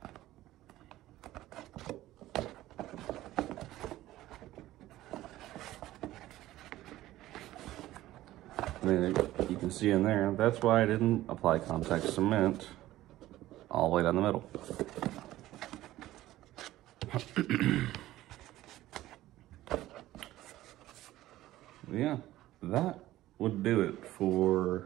And then you can see in there, that's why I didn't apply contact cement all the way down the middle. Yeah, that would do it for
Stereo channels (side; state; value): left; quieter; 15.4 dB